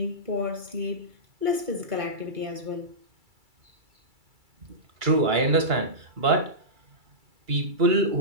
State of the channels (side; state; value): left; late; 2.3 ms